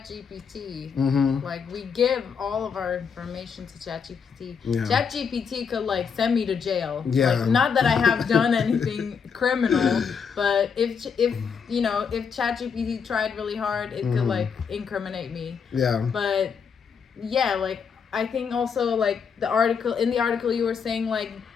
Like, we give all of our information to ChatGPT. Yeah. ChatGPT could like send me to jail. Yeah. Like, not that I have done anything criminal, but if you know, if ChatGPT tried really hard, it could like incriminate me. Yeah. But yeah, like, I think also like in the article you were saying like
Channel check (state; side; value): quieter; right; 6.3 dB